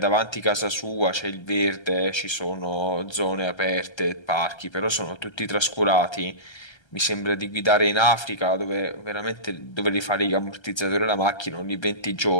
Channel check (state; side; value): late; right; 1.3 ms